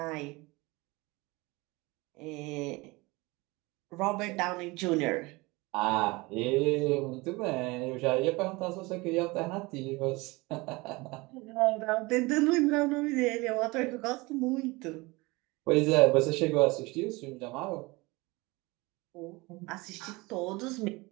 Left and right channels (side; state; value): left; quieter; 23.5 dB